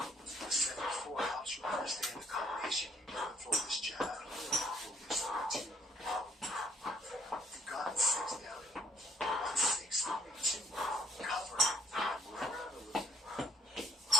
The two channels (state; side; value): normal; both; correlation 0.65